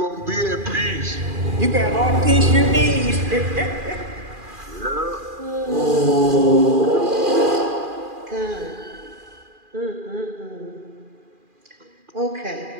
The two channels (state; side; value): late; left; 2.4 ms